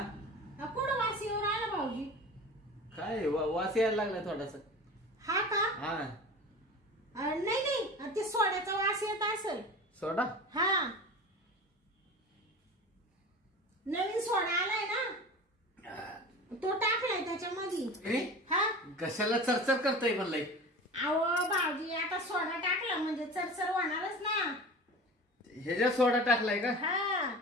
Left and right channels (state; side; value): normal; both; correlation 0.35